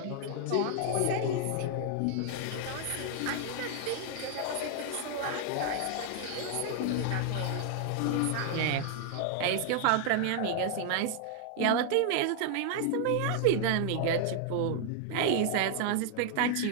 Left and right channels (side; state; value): both; different; correlation 0.00